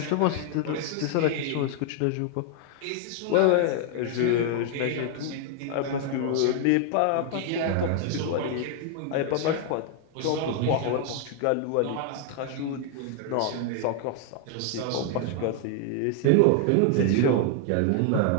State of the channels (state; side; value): different; both; correlation 0.00